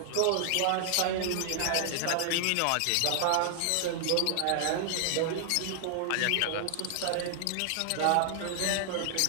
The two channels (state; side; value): different; both; correlation -0.01